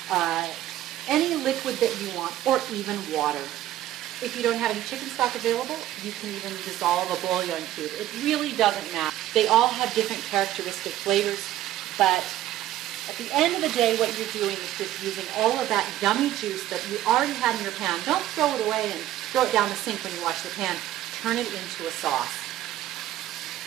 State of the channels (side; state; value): left; quieter; 13.5 dB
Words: any liquid that you want, or even water. If you don't have any chicken stock available, you can even dissolve a bouillon cube. It really doesn't matter. They all have different characteristic flavors, but at the end of the day, what you're doing is just using all of that yummy juice that you already had in your pan. Don't throw it away and throw it down the sink when you wash the pan. Turn it into a sauce.